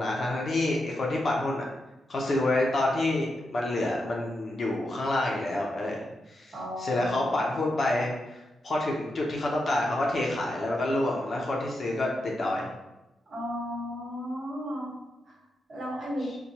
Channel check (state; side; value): normal; both; correlation 0.86